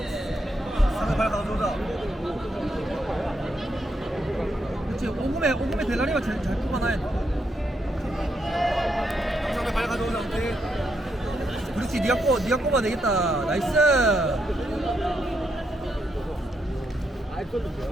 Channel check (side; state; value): both; normal; correlation 0.79